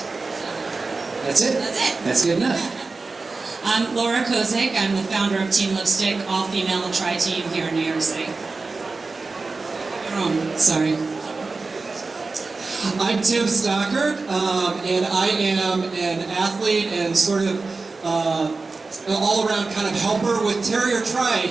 that's it. That's it. That's good enough. I'm Laura Kozik. I'm the founder of Team Lipstick, all-female tri-team here in New York City. Sorry. I'm Tim Stockert, and I am an athlete and sort of an all-around kind of helper with Terrier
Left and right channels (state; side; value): quieter; left; 3.9 dB